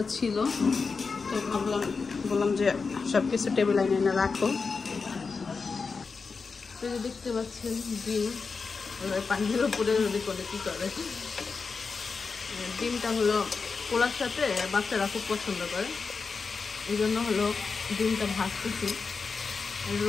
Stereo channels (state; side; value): quieter; right; 4.8 dB